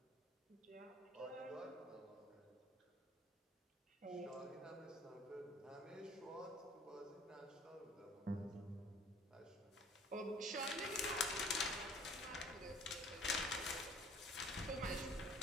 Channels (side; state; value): both; normal; correlation 0.52